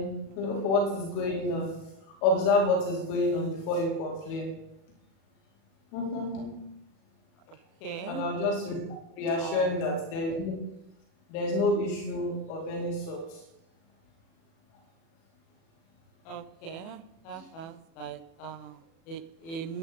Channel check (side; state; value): right; late; 37 ms